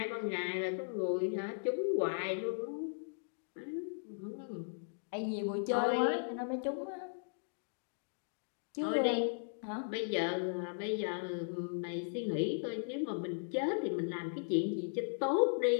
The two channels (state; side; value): silent; right; digital silence